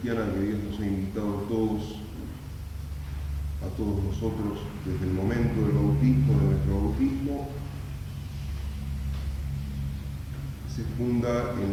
que Dios nos ha invitado a todos nosotros, desde el momento del bautismo, de nuestro bautismo, se funda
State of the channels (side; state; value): both; identical; correlation 1.00